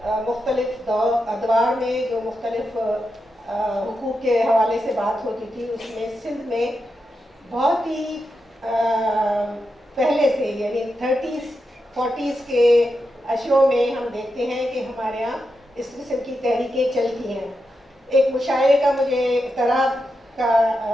مختلف ادوار میں جو مختلف حقوق کے حوالے سے بات ہوتی تھی، اس میں سندھ میں بہت ہی پہلے سے، یعنی 30s 40s کے اشروں میں ہم دیکھتے ہیں کہ ہمارے یہاں اس قسم کی تحریکیں چلتی ہیں۔ ایک مشاعرے کا مجھے اعتراض کا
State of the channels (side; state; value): both; normal; correlation 0.87